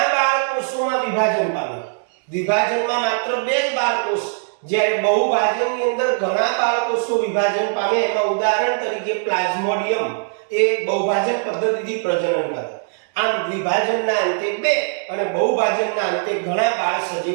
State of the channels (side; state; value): left; silent; digital silence